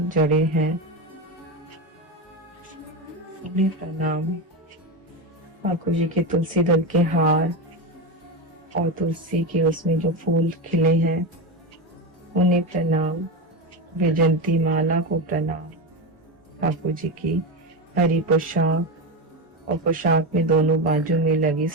जड़े हैं उन्हें प्रणाम। ठाकुर जी के तुलसी दल के हार और तुलसी के उसमें जो फूल खिले हैं उन्हें प्रणाम। वैजंती माला को प्रणाम। ठाकुर जी की हरी पोशाक और पोशाक में दोनों बाजू में लगी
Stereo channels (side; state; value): both; normal; correlation 0.16